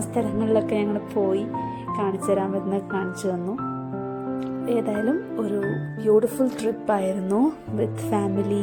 സ്ഥലങ്ങളിലൊക്കെ ഞങ്ങൾ പോയി കാണിച്ചു തരാൻ പറ്റുന്ന കാണിച്ചു തന്നു. ഏതായാലും ഒരു ബ്യൂട്ടിഫുൾ ട്രിപ്പായിരുന്നു with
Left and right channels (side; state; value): both; identical; correlation 1.00